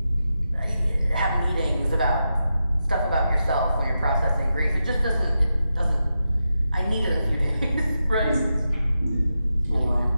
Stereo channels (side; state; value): both; inverted; correlation -0.88